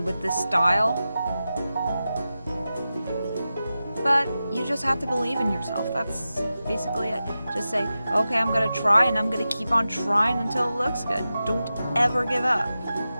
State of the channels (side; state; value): both; inverted; correlation -0.93